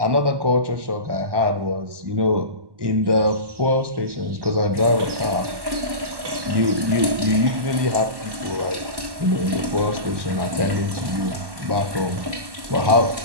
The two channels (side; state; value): left; late; 1.1 ms